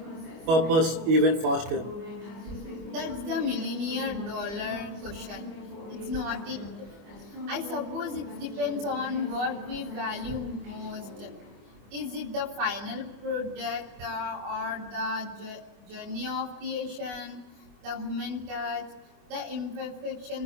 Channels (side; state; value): left; late; 25 ms